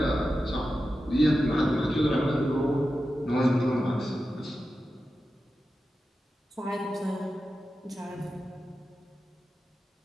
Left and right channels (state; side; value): normal; both; correlation 0.92